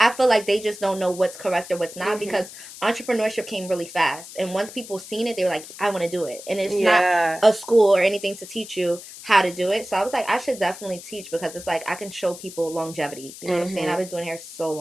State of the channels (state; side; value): noise; left; hiss, 15 dB below the sound